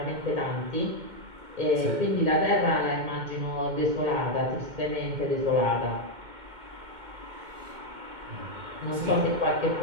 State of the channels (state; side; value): late; left; 2.2 ms